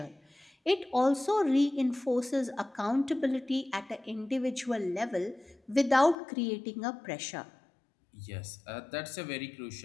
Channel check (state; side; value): drops out; right; at 6.2 s